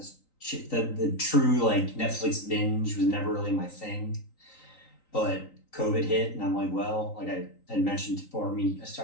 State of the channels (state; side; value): late; right; 3.9 ms